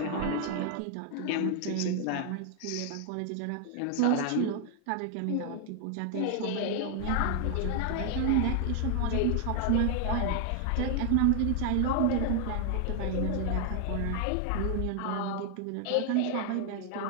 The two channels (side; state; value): both; different; correlation 0.00